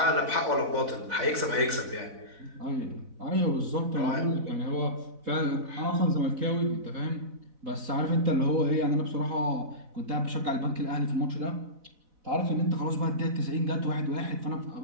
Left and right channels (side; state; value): left; late; 4.0 ms